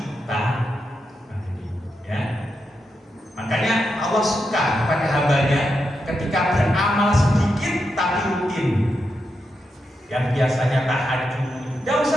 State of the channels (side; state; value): both; normal; correlation 0.85